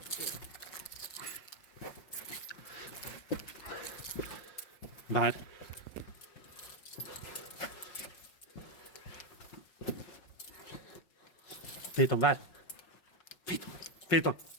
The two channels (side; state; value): right; late; 5.5 ms